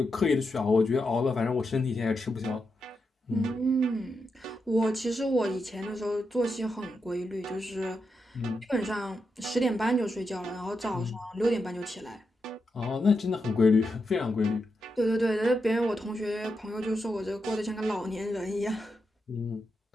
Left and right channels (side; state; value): both; normal; correlation 0.85